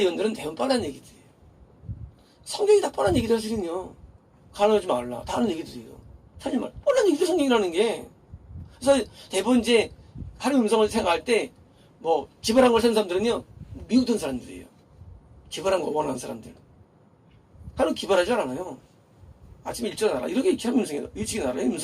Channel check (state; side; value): identical; both; correlation 1.00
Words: 대부분 뻔한 얘기들이에요. 성경이 다 뻔한 얘기들 하시는요. 가능하지 말라. 다 하는 얘기들이에요. 사실 말 뻔한 얘기들 성경이라는 게. 그래서 대부분 이제 하나님 음성을 생각할 때 뭐 기발한 걸 쓰는 사람들은요, 미국 돈 사람들이에요. 기발한 거 원하는 사람들. 하나님 기발하지 않아요. 아침에 일찍 나라. 이렇게 하면 음성이에요. 일찍 나라.